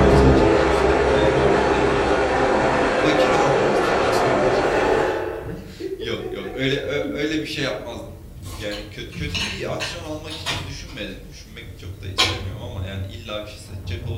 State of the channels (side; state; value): both; identical; correlation 1.00